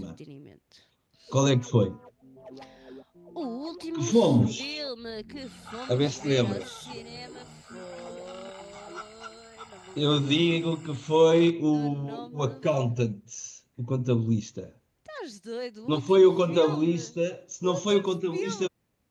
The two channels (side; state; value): both; identical; correlation 1.00